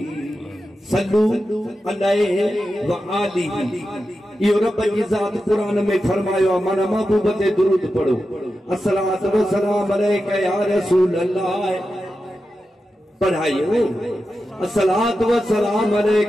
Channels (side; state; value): both; normal; correlation 0.91